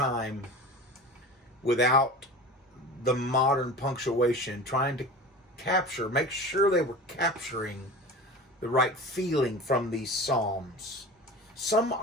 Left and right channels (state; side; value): normal; both; correlation 0.35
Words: without the modern punctuation, trying to make sure they were capturing the right feeling from these psalms. Some